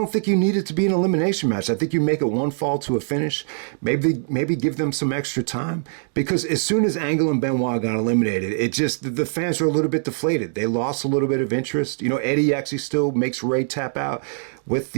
think you need it to be an elimination match. I think you make it one fall to a finish, maybe give them some extra time, because as soon as Angle and Benoit got eliminated, the fans were a little bit deflated. They lost a little bit of interest. Eddie actually still makes Ray tap out with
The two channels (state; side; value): silent; left; digital silence